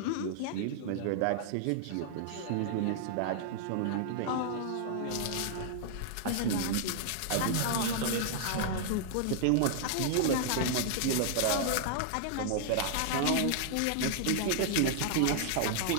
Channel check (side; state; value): both; different; correlation -0.01